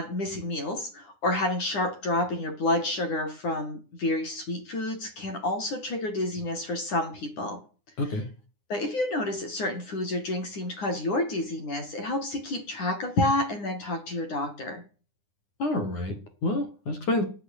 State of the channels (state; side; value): late; right; 9.8 ms